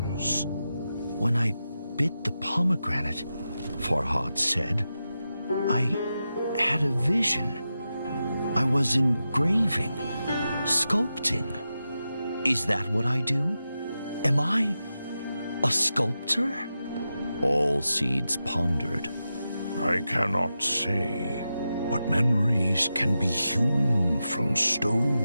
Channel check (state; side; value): inverted; both; correlation -0.90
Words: When I bit the pomegranate, Farhad said, I had a vision. I was engraving, sculpting. Is that what I do? Am I a sculptor? Allseeds pondered. I cannot say, but memories can be hewn from